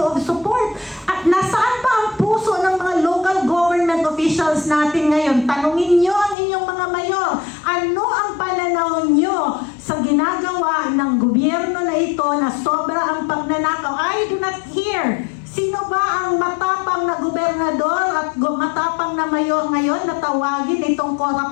of support. At nasaan ba ang puso ng mga local government officials natin ngayon? Tanungin nyo ang inyong mga mayor, ano ang pananaw nyo sa ginagawa ng gobyerno na ito na sobra ang pagnanakaw? I do not hear. Sino ba ang matapang na gobernador at matapang na mayor ngayon na tawagin itong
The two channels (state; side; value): drops out; right; at 6.4 s